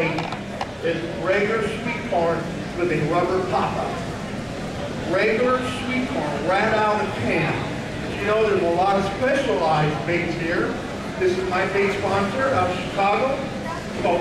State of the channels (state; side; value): identical; both; correlation 1.00